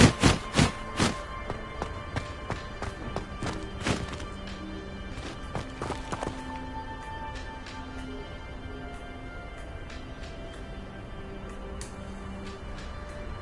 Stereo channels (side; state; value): both; identical; correlation 1.00